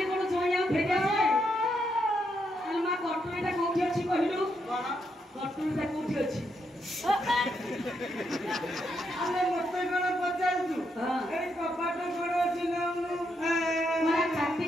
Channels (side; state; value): both; normal; correlation 0.79